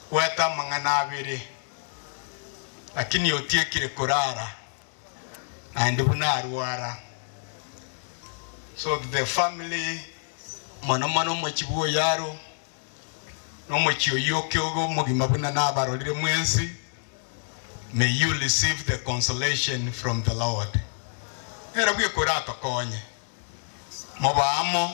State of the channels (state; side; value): silent; right; digital silence